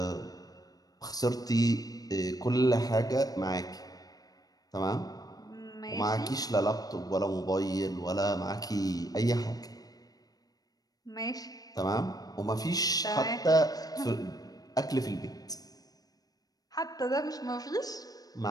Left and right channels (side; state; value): right; late; 0.18 ms